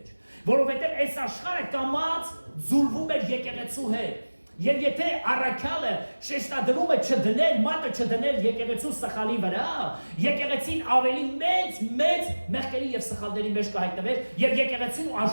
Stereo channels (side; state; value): both; inverted; correlation -1.00